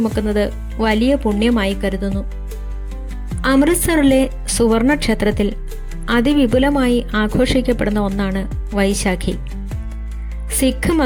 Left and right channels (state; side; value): identical; both; correlation 1.00